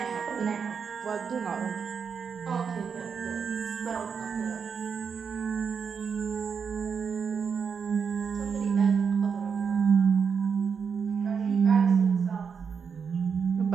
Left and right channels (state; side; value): quieter; left; 6.3 dB